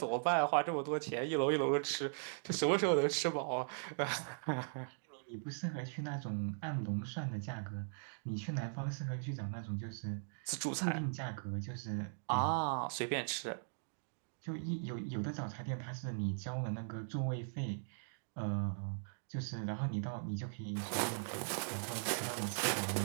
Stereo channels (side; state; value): left; silent; digital silence